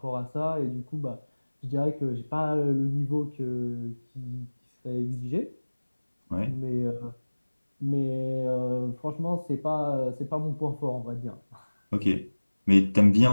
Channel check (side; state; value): both; inverted; correlation -1.00